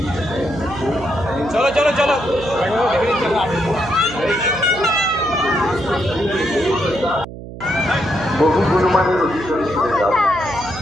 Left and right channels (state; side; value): noise; right; hum, 12 dB below the sound